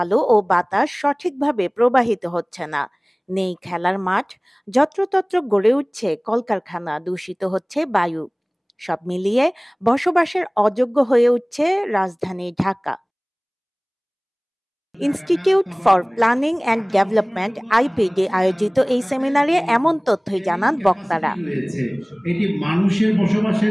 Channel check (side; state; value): both; identical; correlation 1.00